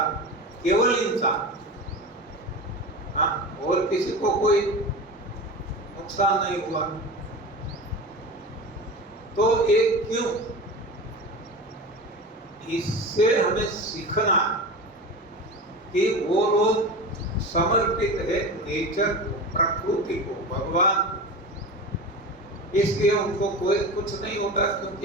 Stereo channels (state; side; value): normal; both; correlation 0.29